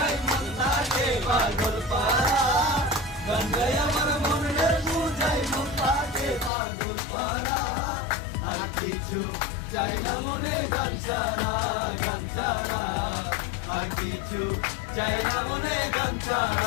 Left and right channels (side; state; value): right; drops out; at 6.5 s